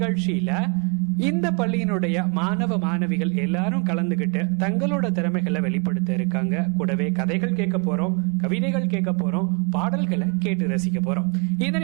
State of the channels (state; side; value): quieter; left; 33.2 dB